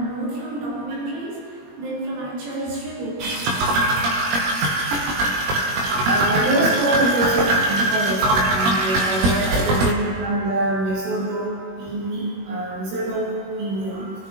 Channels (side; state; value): left; late; 21 ms